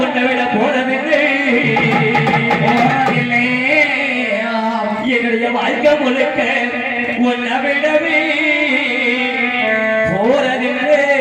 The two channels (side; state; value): both; identical; correlation 1.00